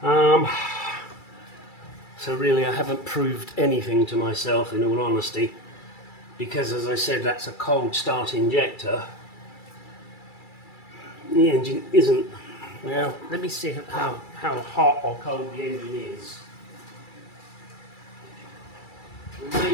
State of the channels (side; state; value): right; late; 2.3 ms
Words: So really I haven't proved anything to myself, in all honesty, because as I said, that's a cold start injector. The engine isn't. Now let me see how hot or cold the engine is. And